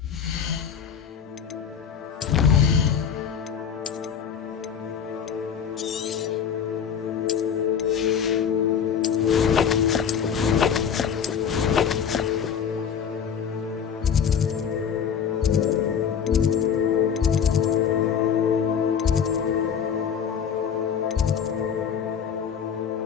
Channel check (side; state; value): right; quieter; 7.5 dB